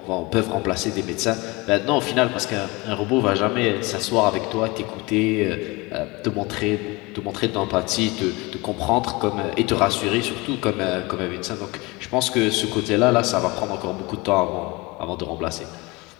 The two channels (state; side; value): quieter; right; 24.5 dB